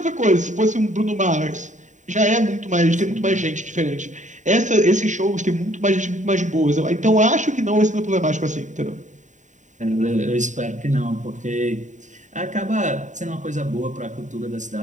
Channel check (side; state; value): left; late; 0.36 ms